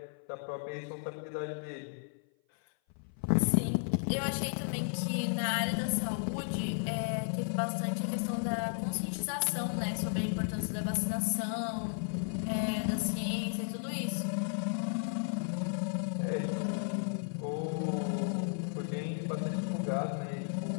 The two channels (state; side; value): silent; right; 55 dB below the other